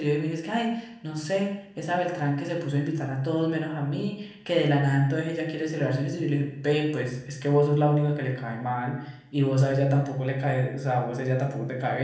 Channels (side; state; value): both; identical; correlation 1.00